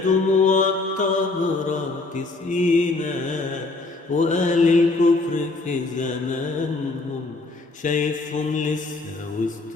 دموع الطهرة تسقينا، وأهل الكفر في زمانهم شايفهم لسه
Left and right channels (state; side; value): quieter; right; 3.4 dB